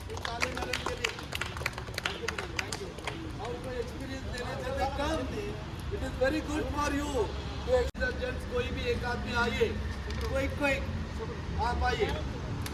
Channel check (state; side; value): identical; both; correlation 1.00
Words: ये ताली मारने के लिए। Thank you, madam. Thank you. और कोई experience देना चाहते कम? It is very good for you. तो एक्सर्जेंट्स कोई भी एक आदमी आइए, क्विक आप आइए।